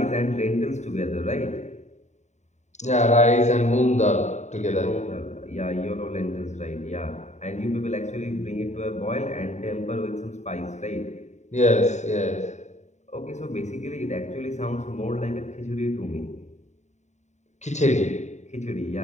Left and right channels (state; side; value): late; right; 0.34 ms